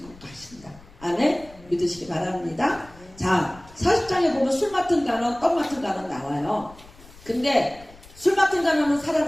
가신다. 아멘? 믿으시기 바랍니다. 자, 40장에 보면 술 맡은 간원, 떡 맡은 간원 나와요. 근데 술 맡은 간원은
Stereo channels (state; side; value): noise; left; rumble, 22 dB below the sound